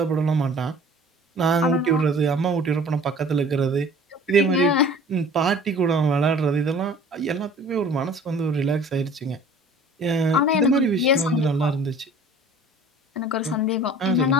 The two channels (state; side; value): normal; both; correlation 0.47